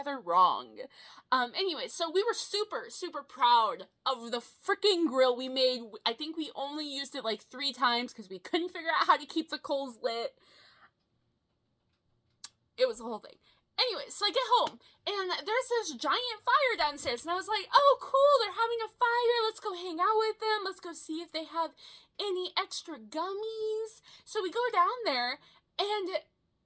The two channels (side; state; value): both; identical; correlation 1.00